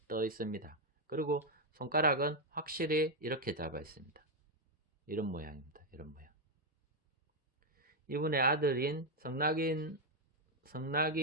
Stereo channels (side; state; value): both; normal; correlation 0.03